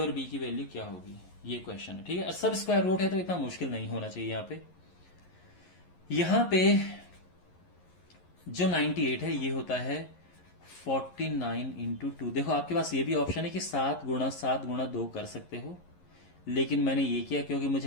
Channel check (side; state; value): right; late; 11 ms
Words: बी की वैल्यू क्या होगी, ये क्वेश्चन है। ठीक है, सब स्क्वायर रूट है तो इतना मुश्किल नहीं होना चाहिए। यहां पे जो 98 है ये होता है 49 इंटू 2। देखो आपके पास ये भी ऑप्शन है कि 7 गुणा 7 गुणा 2 कर सकते हो, लेकिन मैंने ये किया क्योंकि